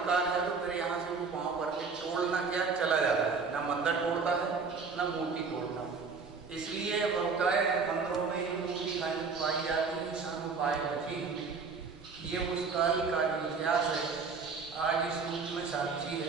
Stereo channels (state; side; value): quieter; left; 4.9 dB